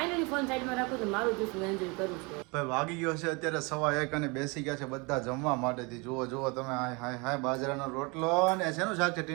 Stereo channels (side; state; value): left; quieter; 28.8 dB